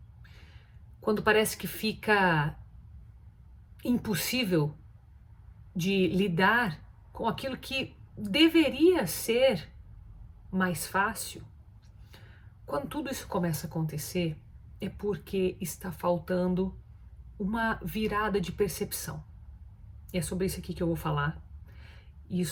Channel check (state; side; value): identical; both; correlation 1.00